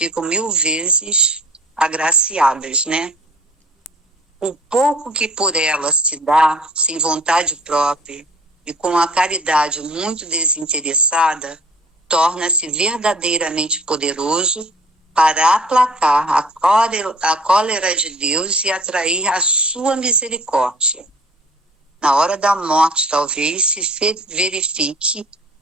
1000 vezes agraciadas, né? O pouco que por ela se dá, sem vontade própria, e com a caridade muito desinteressada, torna-se verdadeiramente poderoso para aplacar a cólera de Deus e atrair a sua misericórdia. Na hora da morte, talvez, se verifique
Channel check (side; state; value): both; normal; correlation 0.48